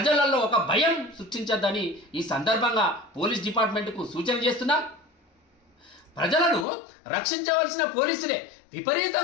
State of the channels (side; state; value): right; drops out; at 6.7 s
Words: ఒక భయం సృష్టించద్దని ఈ సందర్భంగా పోలీస్ డిపార్ట్మెంట్కు సూచన చేస్తున్నాం. ప్రజలను రక్షించవలసిన పోలీసులే